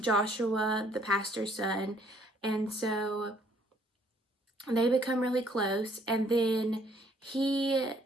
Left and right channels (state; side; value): normal; both; correlation 0.64